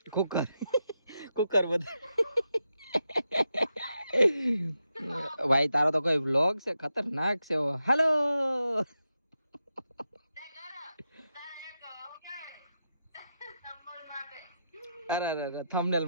કુકર બધું ભાઈ તારો તો કોઈ વ્લોગ છે ખતરનાક છે. હેલો અરે થંબનેલ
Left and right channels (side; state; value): both; inverted; correlation -0.86